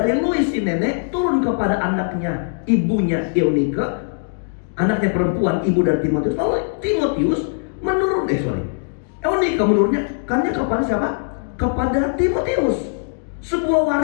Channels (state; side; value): silent; right; digital silence